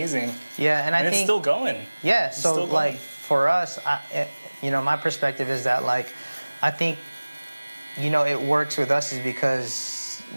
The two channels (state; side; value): inverted; both; correlation -1.00